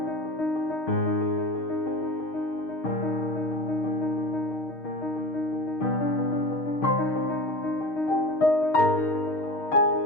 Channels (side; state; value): right; late; 6.5 ms